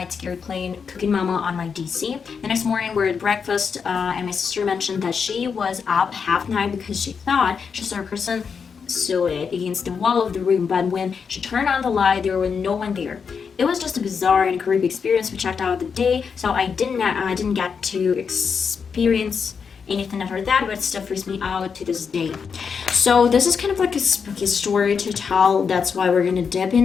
scared, playing Cooking Mama on my DC. The next morning, we were at breakfast, and my sister mentioned that she was up half night because she thought she saw a person silhouette against the wall of the room, but when she turned on the light, there was no one there. It was just a bizarre and creepy experience. We checked out the day, so I didn't get to experience anything after that, but it still freaks me out to this day. So this is kind of like a spooky story to tell. That's why we're gonna dip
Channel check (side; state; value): right; quieter; 6.1 dB